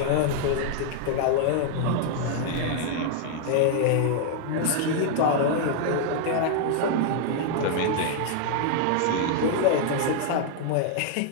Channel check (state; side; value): different; both; correlation -0.01